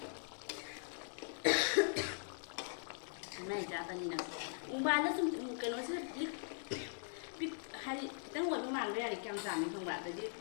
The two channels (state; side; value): silent; right; digital silence